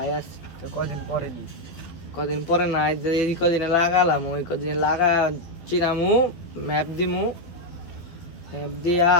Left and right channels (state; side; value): late; right; 12 ms